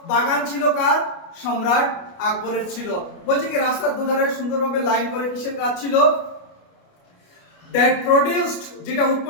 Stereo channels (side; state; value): right; late; 29 ms